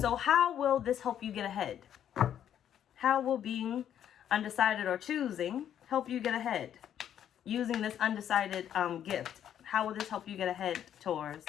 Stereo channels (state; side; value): quieter; right; 10.0 dB